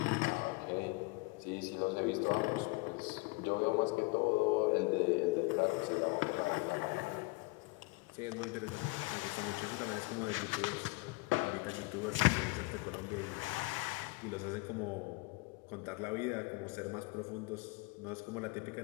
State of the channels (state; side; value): quieter; right; 25.3 dB